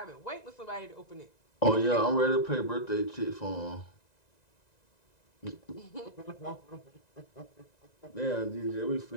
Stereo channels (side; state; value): right; late; 1.9 ms